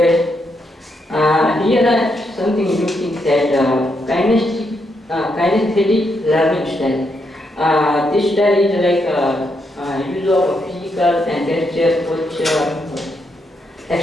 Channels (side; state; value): both; normal; correlation 0.79